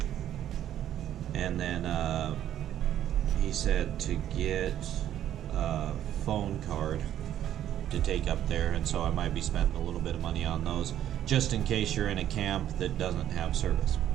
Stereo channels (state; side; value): quieter; left; 11.3 dB